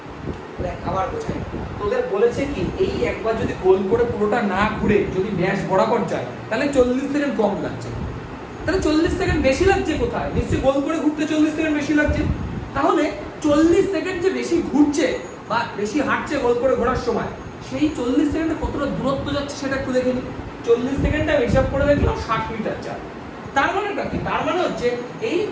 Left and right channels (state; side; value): identical; both; correlation 1.00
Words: দেখ আবার বোঝাই, তোদের বলেছে কি এই একবার যদি গোল করে পুরোটা না ঘুরে যদি ব্যাস বরাবর যায় তাহলে 40 সেকেন্ড কম লাগছে, তাহলে 40 সেকেন্ড বেশি লাগছে কোথায়, নিশ্চয়ই গোল করে ঘুরতে 40 সেকেন্ড বেশি লাগছে, তাহলে 40 সেকেন্ড যে বেশি ঘুরছে বা বেশি হাঁটছে গোল করে ঘোরার সময় সেই 40 সেকেন্ডে কতটা দূরত্ব যাচ্ছে সেটা একটু দেখে নিই। 40 সেকেন্ডে আমি হিসাব করে দেখলাম 60 মিটার যায়, তার মানেটা কি, তার মানে হচ্ছে এই